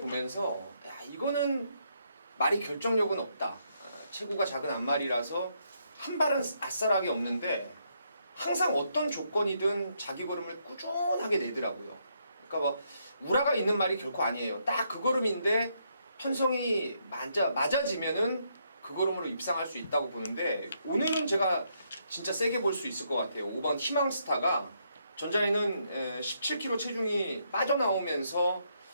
이거는 말이 결정력은 없다. 체구가 작은 앞말이라서 한 발은 아싸라게 없는데 항상 어떤 조건이든 자기 걸음을 꾸준하게 내더라고요. 그러니까 뭐 우라가 있는 말이 결코 아니에요. 딱 그 걸음인데 편성이 맞아지면은 그 걸음으로 입상할 수 있다고 보는데 오늘은 제가 진짜 세게 볼 수 있을 것 같아요. 5번 희망스타가 전자에는 17kg 체중이 빠져나오면서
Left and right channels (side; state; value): both; inverted; correlation -0.76